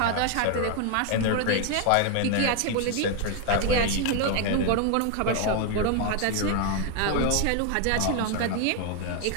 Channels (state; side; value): different; both; correlation 0.00